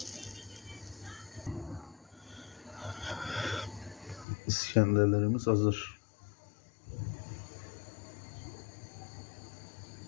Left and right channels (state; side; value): drops out; right; at 4.2 s